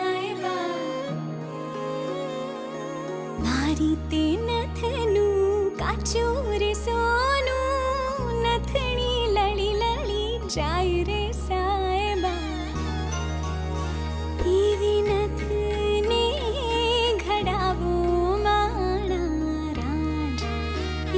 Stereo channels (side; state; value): both; identical; correlation 1.00